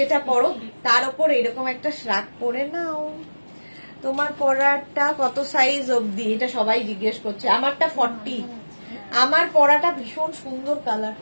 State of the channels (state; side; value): inverted; both; correlation -1.00